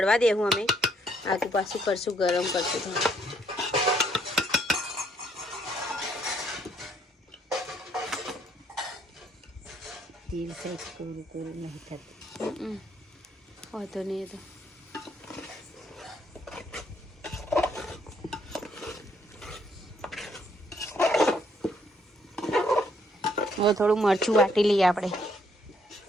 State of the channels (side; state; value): both; normal; correlation 0.69